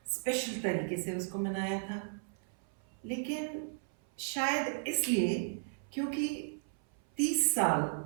स्पेशल तरीके से उसको मनाया था। लेकिन शायद इसलिए क्योंकि 30 साल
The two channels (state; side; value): silent; left; 54 dB below the other